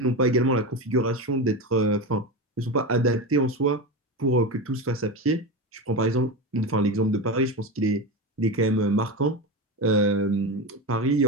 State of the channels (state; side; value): normal; both; correlation 0.20